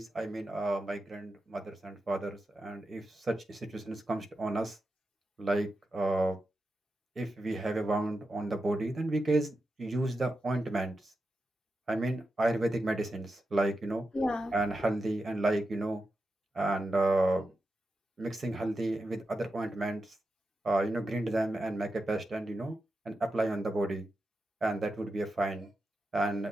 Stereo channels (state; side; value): normal; both; correlation 0.89